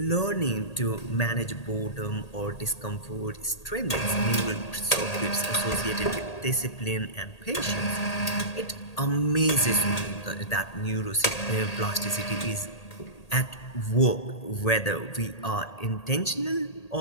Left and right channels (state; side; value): late; right; 1.8 ms